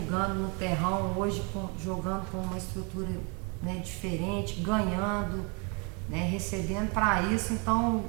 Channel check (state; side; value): quieter; left; 33.4 dB